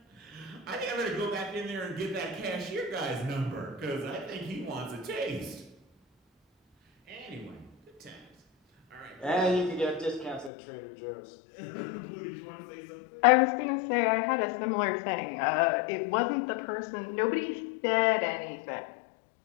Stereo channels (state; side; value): drops out; right; at 10.5 s